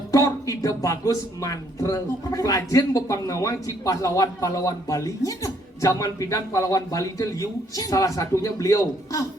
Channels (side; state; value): both; normal; correlation 0.68